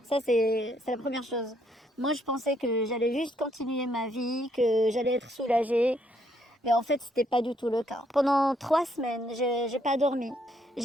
Ça, c'est la première chose. Moi, je pensais que j'allais juste continuer ma vie, que j'allais être soulagée. Mais en fait, c'était pas du tout le cas. Pendant 3 semaines, j'ai pas dormi.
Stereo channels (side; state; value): both; normal; correlation 0.71